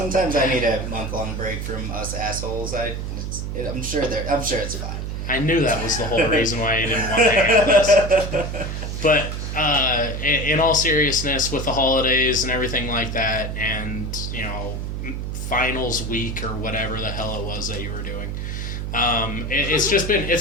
I need a month-long break from us assholes. I'm sure it's fine. I knew that was the whole reason why you didn't want to hang out with us. But in all seriousness, with the holidays and everything like that, and, finals week or whatever the hell it was that you were doing,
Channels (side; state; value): right; noise; hum, 4 dB below the sound